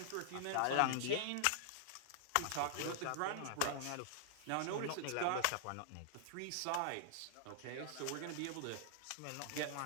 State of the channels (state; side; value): different; both; correlation -0.01